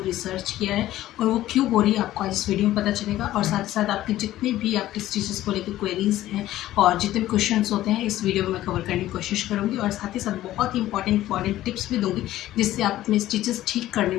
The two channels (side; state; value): right; quieter; 14.4 dB